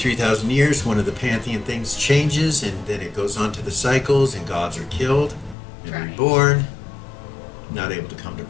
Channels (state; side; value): drops out; right; at 5.6 s